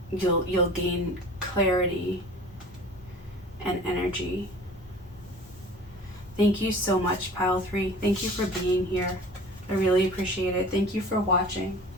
you'll gain clarity and energy. Thank you so much, Pile 3. Thank you for being here. I really appreciate it. Thank you for watching.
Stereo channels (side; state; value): both; normal; correlation 0.42